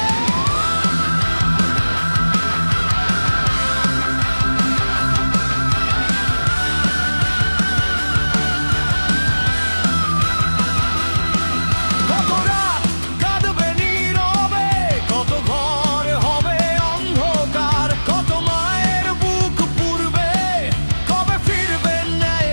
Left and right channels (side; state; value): both; inverted; correlation -1.00